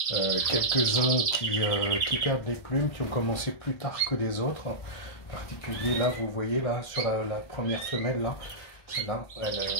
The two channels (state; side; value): late; right; 1.6 ms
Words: quelques-uns qui perdent les plumes, qui ont commencé plus tard que les autres. En particulier là, vous voyez là, sur la première femelle là, celle-là,